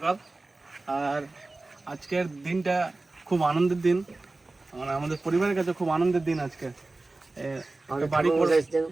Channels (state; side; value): quieter; left; 3.2 dB